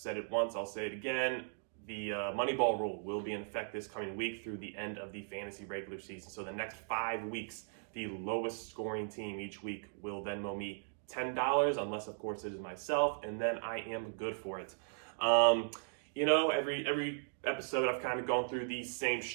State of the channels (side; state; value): left; silent; digital silence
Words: it once, I'll say it again. The Moneyball rule will be in effect this coming week through the end of the fantasy regular season. So the next 5 weeks, the lowest scoring team each week will Venmo me $10, unless of course it is myself, and then I am good for it. You know, every episode I've kind of gone through the same